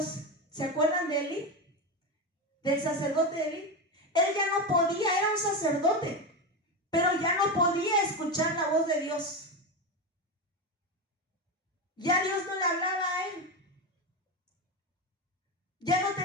¿Se acuerdan de Elí? Del sacerdote Elí. Él ya no podía, era un sacerdote, pero ya no podía escuchar la voz de Dios. Ya Dios no le hablaba a él. Ya no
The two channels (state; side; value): normal; both; correlation 0.16